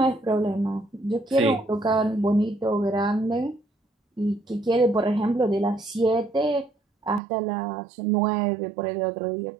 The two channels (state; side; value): drops out; left; at 7.2 s